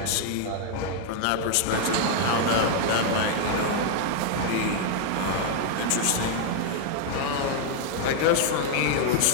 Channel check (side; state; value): both; different; correlation 0.00